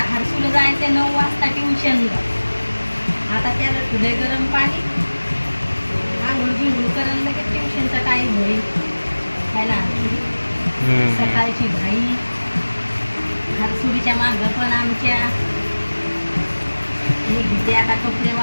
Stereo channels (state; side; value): inverted; both; correlation -1.00